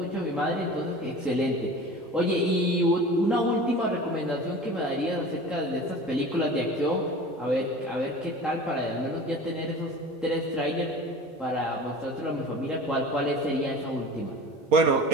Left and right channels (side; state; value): both; normal; correlation 0.38